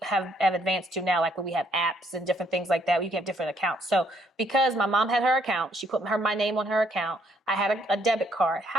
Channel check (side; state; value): both; normal; correlation 0.68